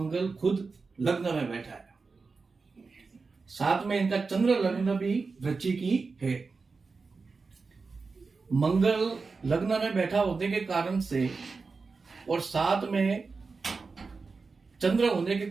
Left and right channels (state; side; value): quieter; left; 4.4 dB